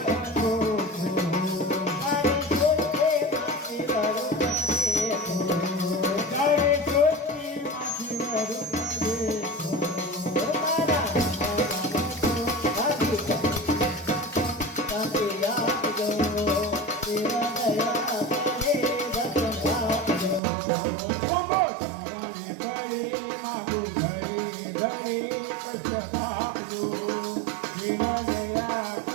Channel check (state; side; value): drops out; left; at 20.4 s